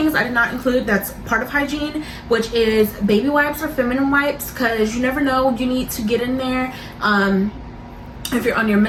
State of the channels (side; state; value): both; identical; correlation 1.00